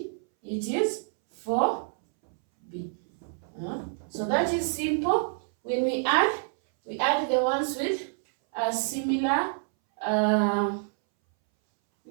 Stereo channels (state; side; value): silent; left; 60 dB below the other